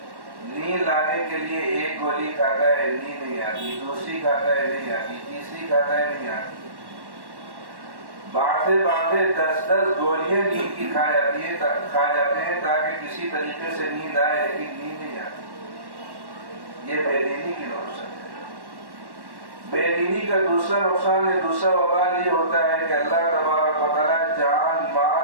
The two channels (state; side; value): late; left; 1.1 ms